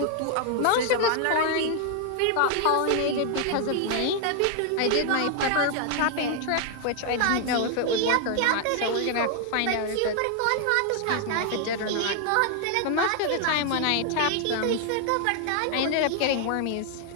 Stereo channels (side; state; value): both; different; correlation 0.00